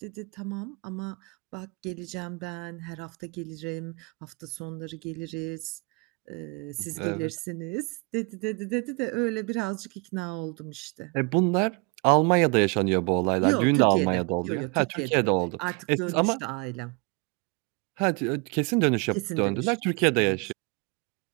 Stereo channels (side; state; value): left; quieter; 30.4 dB